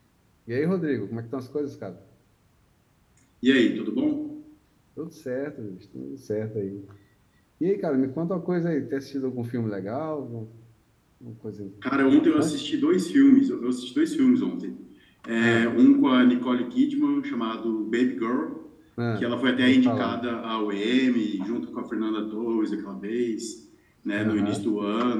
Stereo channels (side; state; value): both; identical; correlation 1.00